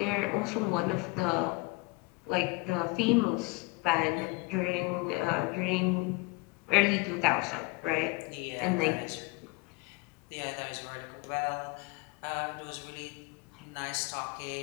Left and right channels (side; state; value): right; quieter; 24.6 dB